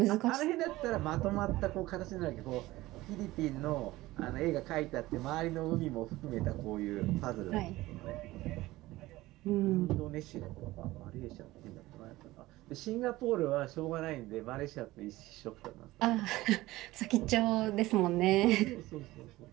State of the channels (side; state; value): left; quieter; 18.1 dB